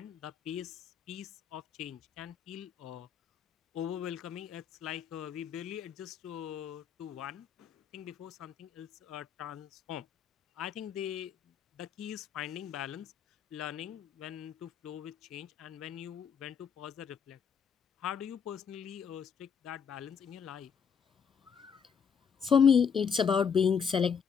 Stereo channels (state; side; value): quieter; right; 6.9 dB